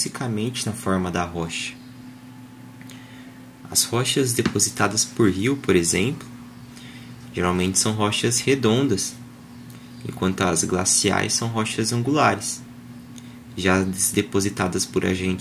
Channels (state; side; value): identical; both; correlation 1.00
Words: na forma da rocha. As rochas depositadas por rio, por exemplo, geralmente são rochas redondas, enquanto as glaciais são rochas angulares. Já as depositadas por